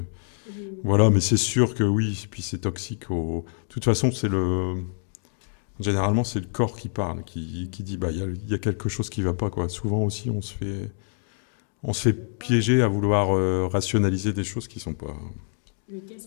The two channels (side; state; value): right; silent; digital silence